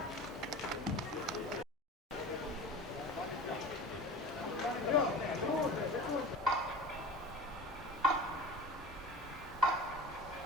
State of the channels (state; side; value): normal; both; correlation 0.35